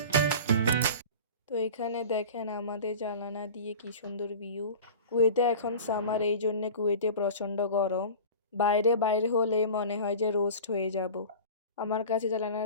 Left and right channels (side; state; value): both; inverted; correlation -0.36